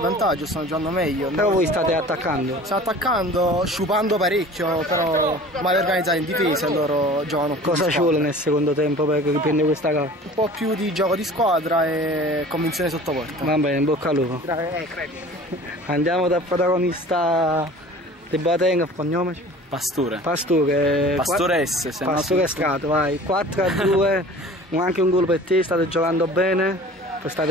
stanno giocando meglio. Però voi state attaccando. Stiamo attaccando, sciupando parecchio, però male organizzati in difesa e loro giocano più. Cosa ci vuole nel secondo tempo per riprendere questa gara? Un po' più di gioco di squadra e convinzione sotto porta. Va bene, in bocca al lupo. Andiamo dal protagonista di Boateng, cognome? Pastore. Pastore S. Pastore Strato, vai. 4-2, anche un gol per te, state giocando bene.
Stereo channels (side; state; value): both; normal; correlation 0.43